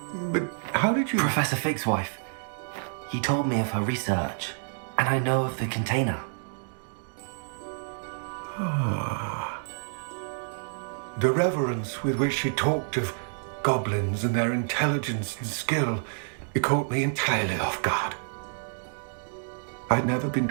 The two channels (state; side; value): silent; left; digital silence